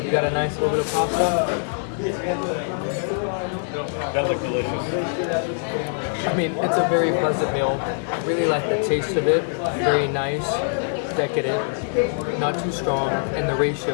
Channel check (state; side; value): silent; right; 63 dB below the other